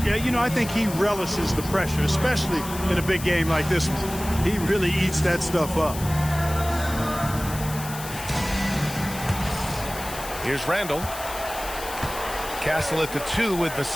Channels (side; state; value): left; noise; hiss, 11 dB below the sound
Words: Yeah, you know, I think he relishes the pressure, especially in a big game like this one. He really eats that stuff up. Here's Randle. Castle at the 2 with